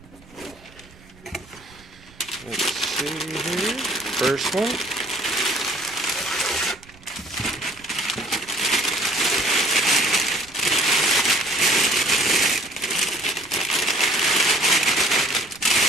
Let's see here. First one.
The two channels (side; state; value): right; noise; rumble, 25 dB below the sound